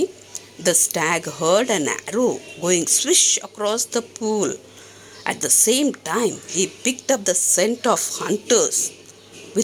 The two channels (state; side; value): identical; both; correlation 1.00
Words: the stag heard an arrow going swish across the pool. At the same time, he picked up the scent of hunters.